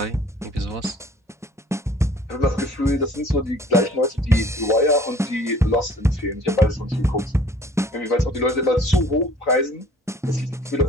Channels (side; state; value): both; normal; correlation 0.53